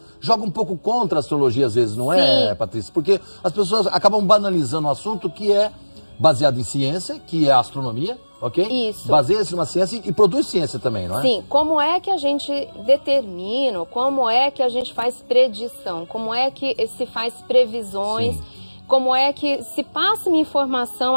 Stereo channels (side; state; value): both; inverted; correlation -1.00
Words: joga um pouco contra a astrologia às vezes, não é, Patrícia? Porque as pessoas acabam banalizando um assunto que é baseado em ciência, que é a astronomia, ok? Isso. Baseia-se numa ciência e produz ciência também, não é? Sim. Como é que a gente determina, como é que a gente faz predição, como é que se faz previsões, como é que se passa uma informação